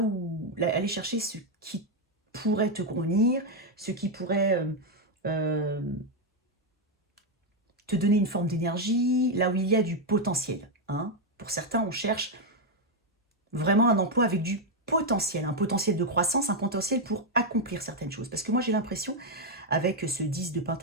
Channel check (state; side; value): normal; both; correlation 0.02